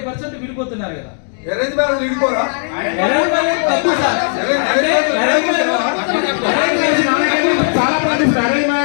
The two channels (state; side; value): silent; right; digital silence